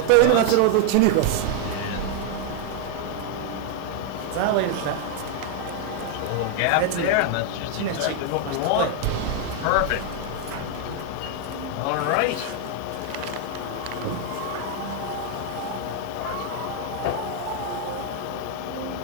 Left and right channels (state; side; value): different; both; correlation 0.00